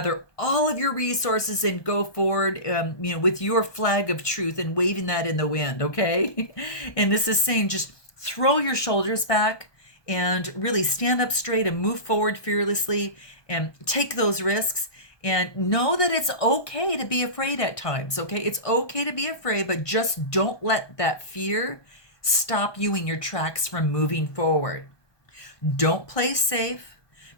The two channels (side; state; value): right; late; 1.2 ms